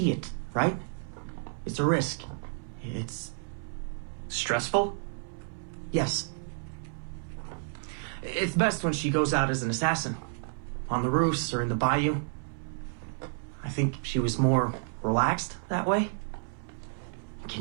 it, right? It's a risk. It's... Stressful? Yes. It's best when she goes out as an assassin. On the roofs or in the bayou. I think she was more relaxed that way.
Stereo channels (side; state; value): left; silent; 57 dB below the other